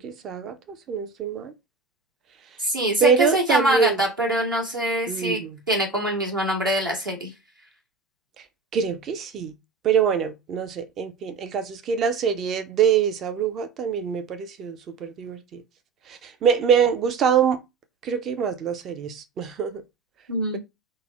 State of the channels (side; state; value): left; quieter; 4.6 dB